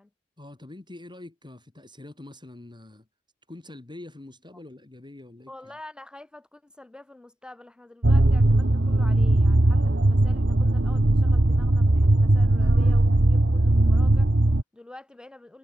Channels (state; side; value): normal; both; correlation 0.91